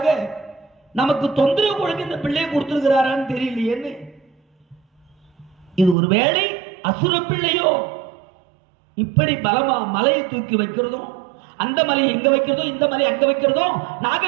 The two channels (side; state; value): left; drops out; at 6.0 s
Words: நமக்கு தொந்தரவு கொடுக்க இந்த பிள்ளையை கொடுத்திருக்கிறாரான்னு தெரியலையேன்னு. இது ஒருவேளை அசுர பிள்ளையோ? இப்படி பலமா மலையை தூக்கி வைக்கிறதும், அந்த மலையை எங்க வைக்கிறதோ இந்த மலையை அங்க வைக்கிறதோ,